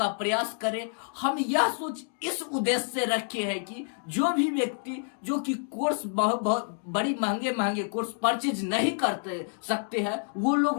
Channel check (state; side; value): silent; right; digital silence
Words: प्रयास करे। हम यह सोच इस उद्देश्य से रखे हैं कि जो भी व्यक्ति जो कि कोर्स बड़ी महंगे कोर्स परचेज नहीं करते सकते हैं, वो